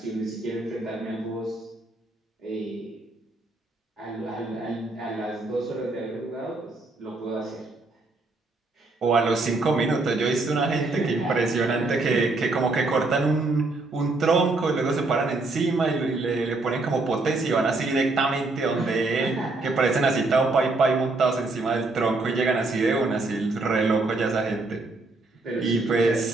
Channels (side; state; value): left; quieter; 3.3 dB